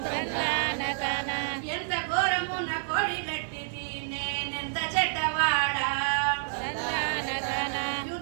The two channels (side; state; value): left; silent; 59 dB below the other